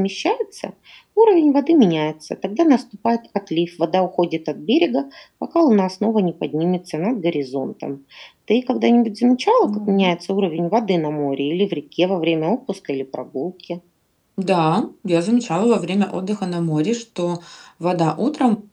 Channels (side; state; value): both; identical; correlation 1.00